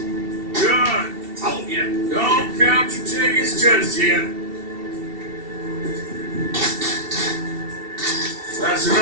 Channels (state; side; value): late; left; 2.7 ms